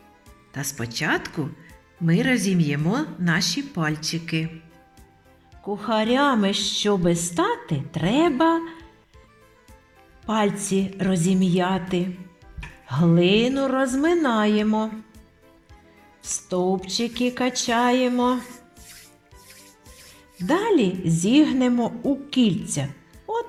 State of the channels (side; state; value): both; identical; correlation 1.00